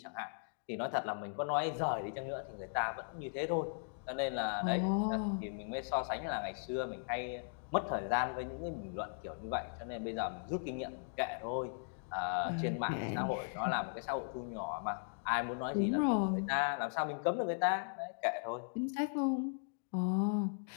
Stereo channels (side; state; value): right; silent; digital silence